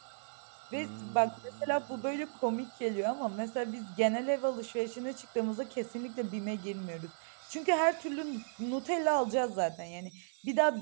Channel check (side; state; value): left; silent; digital silence